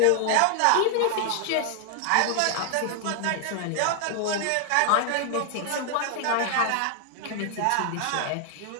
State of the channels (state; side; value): different; both; correlation 0.00